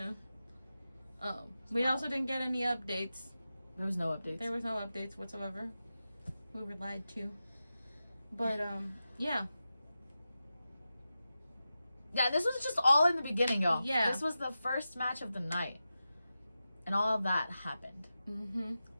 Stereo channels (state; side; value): inverted; both; correlation -0.92